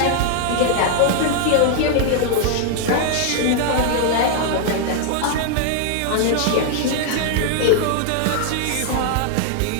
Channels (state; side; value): different; both; correlation 0.00